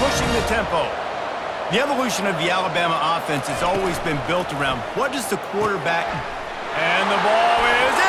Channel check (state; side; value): identical; both; correlation 1.00